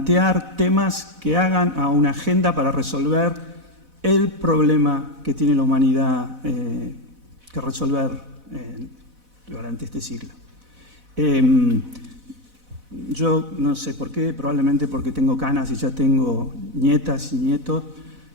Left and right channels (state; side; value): late; left; 4.0 ms